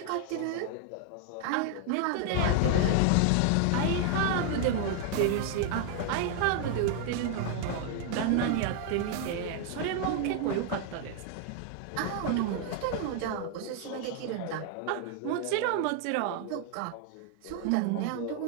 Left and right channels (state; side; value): different; both; correlation 0.00